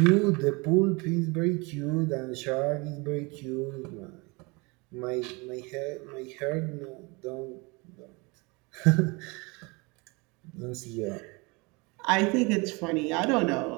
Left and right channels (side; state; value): left; quieter; 27.4 dB